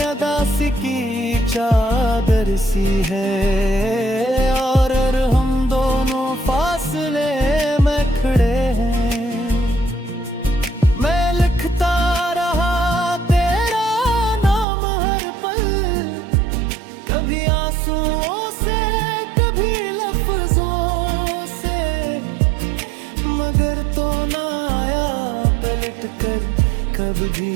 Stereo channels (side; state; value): left; drops out; at 14.7 s